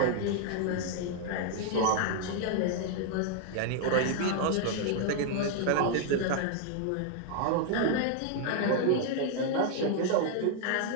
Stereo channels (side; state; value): both; different; correlation 0.00